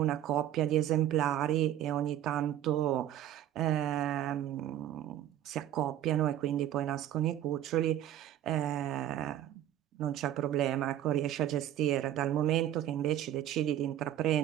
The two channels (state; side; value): quieter; left; 11.8 dB